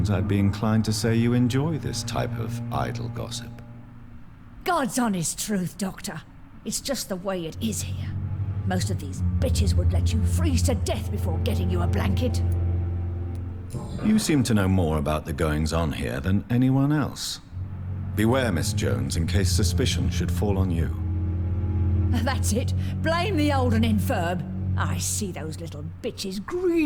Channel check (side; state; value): both; identical; correlation 1.00